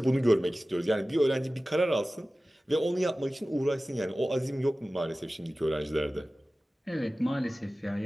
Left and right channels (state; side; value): normal; both; correlation 0.96